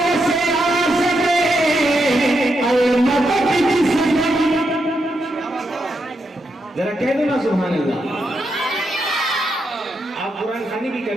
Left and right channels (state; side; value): normal; both; correlation 0.82